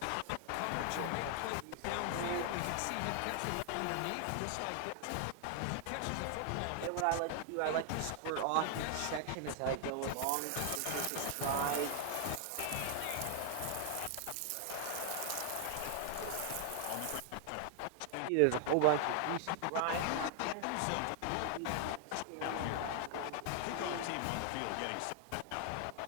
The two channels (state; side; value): different; both; correlation -0.01